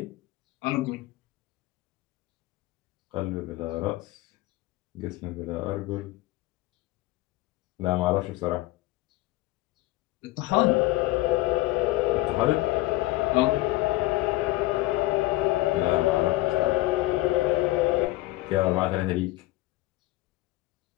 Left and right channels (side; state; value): right; quieter; 18.4 dB